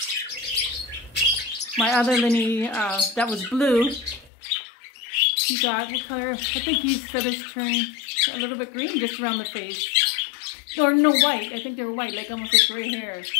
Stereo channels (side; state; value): right; drops out; at 4.3 s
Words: My other Linnie, that was blue, he got, what color? I think his feathers turned a little bit green just around the face. Or no, white. I think they were white, like almost like gray hair.